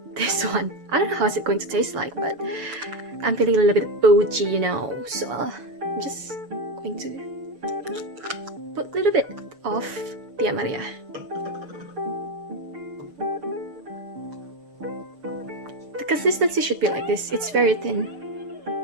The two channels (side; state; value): left; late; 7.2 ms